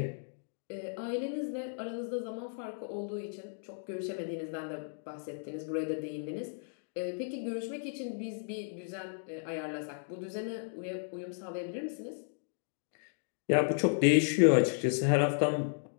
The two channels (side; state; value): right; silent; digital silence